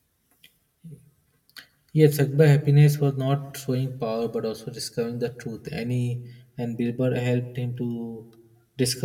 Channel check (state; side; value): identical; both; correlation 1.00